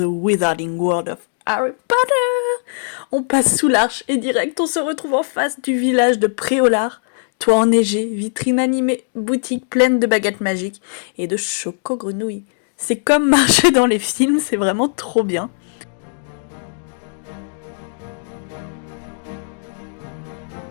Wizarding World of Harry Potter. On passe sous l'arche et direct on se retrouve en face du village de Préolard. Toit enneigé, vitrine animée, boutique pleine de baguettes magiques et de choco-grenouilles. C'est comme marcher dans les films, c'est vraiment trop bien.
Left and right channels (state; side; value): silent; right; digital silence